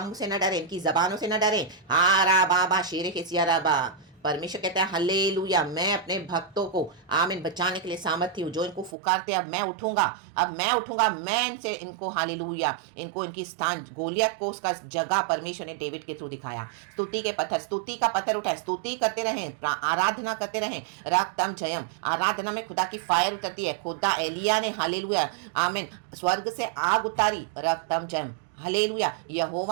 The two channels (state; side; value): drops out; left; at 9.0 s